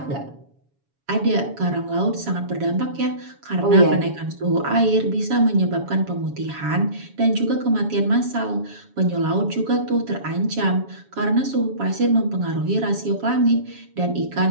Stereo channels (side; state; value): left; late; 7.1 ms